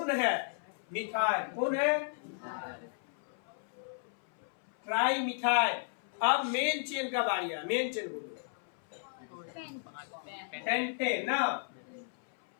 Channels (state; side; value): silent; right; 55 dB below the other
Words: है, मिथाइल। कौन है, ट्राई मिथाइल। अब मेन चेन का बारी है, मेन चेन बोलो, पेंटेन ना।